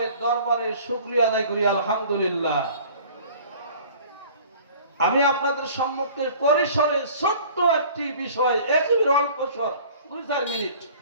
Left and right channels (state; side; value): inverted; both; correlation -0.47